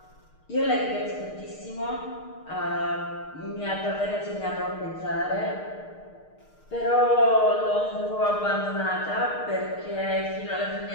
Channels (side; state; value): right; late; 6.5 ms